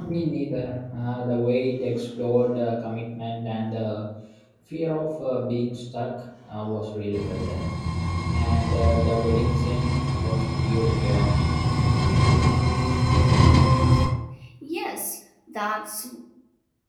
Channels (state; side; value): identical; both; correlation 1.00